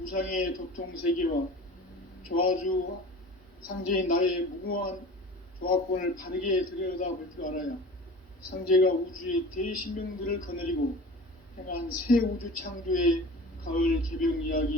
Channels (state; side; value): normal; both; correlation 0.39